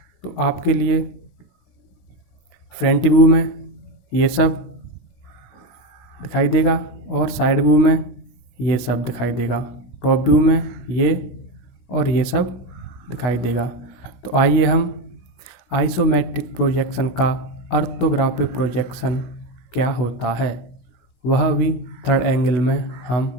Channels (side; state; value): right; late; 17 ms